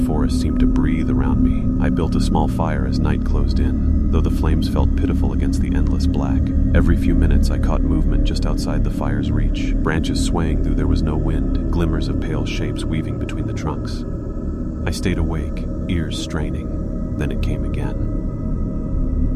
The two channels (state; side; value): identical; both; correlation 1.00